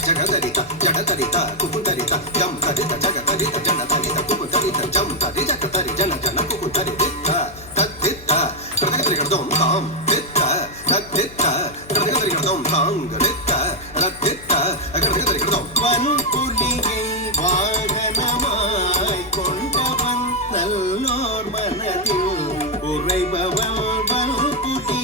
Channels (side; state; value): left; noise; hum, 19 dB below the sound